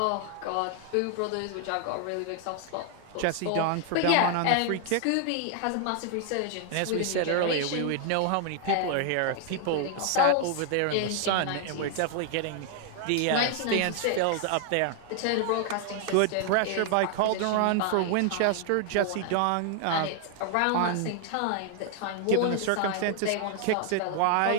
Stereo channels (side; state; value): both; different; correlation 0.00